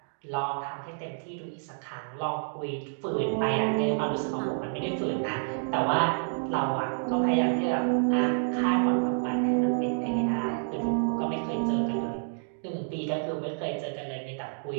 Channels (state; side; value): silent; left; digital silence